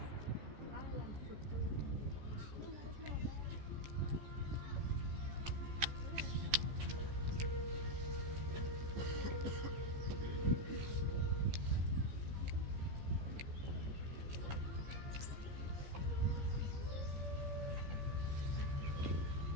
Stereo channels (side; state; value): left; late; 14 ms